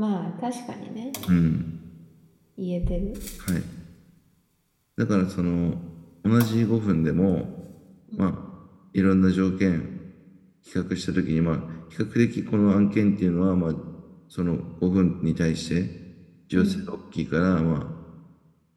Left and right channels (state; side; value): identical; both; correlation 1.00